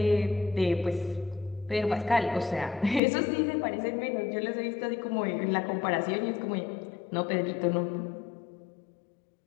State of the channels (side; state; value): right; drops out; at 3.0 s